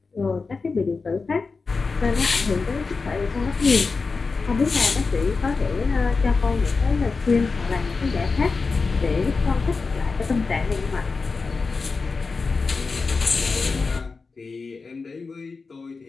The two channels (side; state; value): right; quieter; 4.3 dB